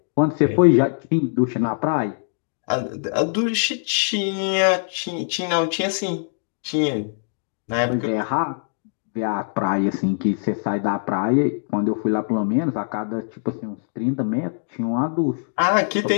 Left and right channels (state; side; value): silent; right; digital silence